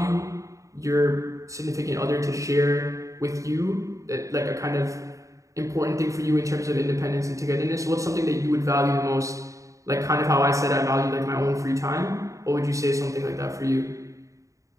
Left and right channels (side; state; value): left; late; 0.16 ms